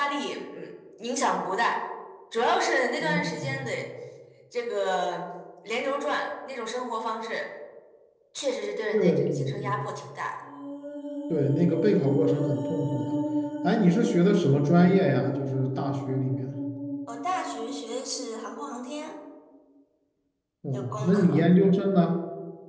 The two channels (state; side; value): identical; both; correlation 1.00